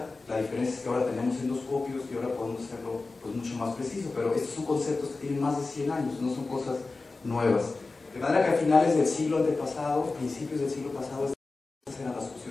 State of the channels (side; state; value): right; quieter; 3.7 dB